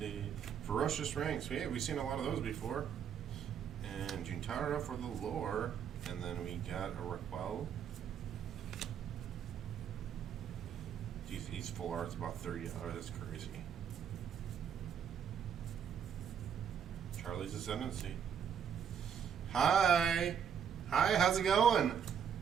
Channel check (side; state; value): left; quieter; 7.9 dB